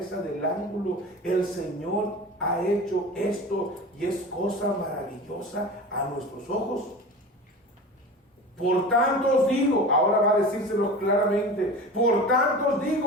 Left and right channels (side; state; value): both; normal; correlation 0.33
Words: del ángulo. El Señor ha hecho esto y es cosa maravillosa a nuestros ojos. Por tanto os digo, ahora va a decírselo claramente, por tanto os